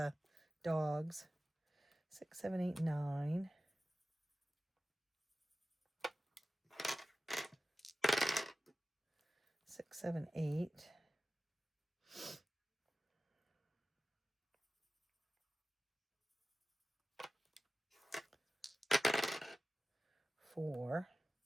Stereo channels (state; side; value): normal; both; correlation 0.95